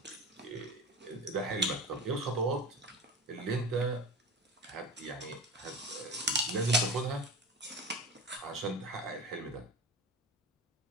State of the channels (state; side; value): normal; both; correlation 0.31